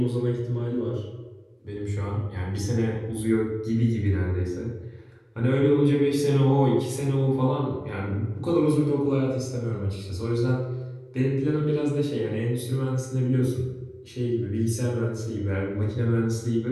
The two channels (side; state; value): both; identical; correlation 1.00